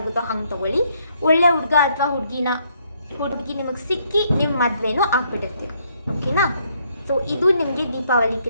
ಹಂಗೆ ತೊಗೊಳ್ಳಿ. ಒಳ್ಳೆ ಹುಡುಗ ಅಥವಾ ಹುಡುಗಿ ನಿಮಗೆ ಸಿಕ್ಕಿ ನಿಮ್ಮ ಮದುವೆನೂ ಆಗ್ಬಿಟ್ಟಿರ್ತೀರ. ಓಕೆನಾ? ಸೊ ಇದು ನಿಮಗೆ ದೀಪಾವಳಿ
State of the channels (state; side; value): inverted; both; correlation -0.71